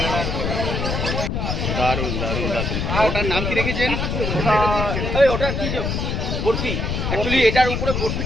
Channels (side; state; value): left; noise; rumble, 1 dB below the sound